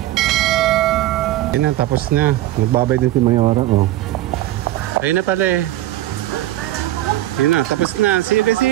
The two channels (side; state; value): left; quieter; 15.0 dB